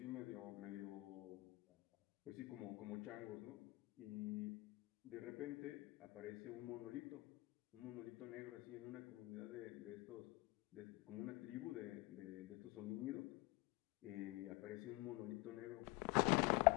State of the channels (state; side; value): quieter; right; 22.4 dB